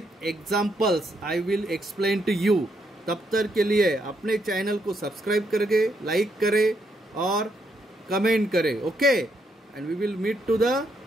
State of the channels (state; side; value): normal; both; correlation 0.76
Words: examples I will explain to you. तब तक के लिए अपने चैनल को सब्सक्राइब करके लाइक करें और कमेंट करें, okay. And we will meet to the